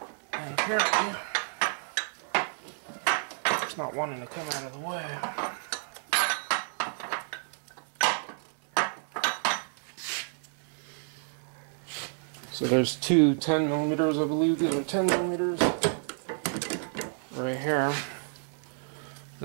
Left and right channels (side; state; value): left; silent; 58 dB below the other